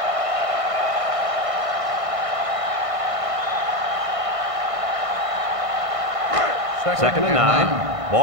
Second and 9.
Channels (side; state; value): left; late; 1.5 ms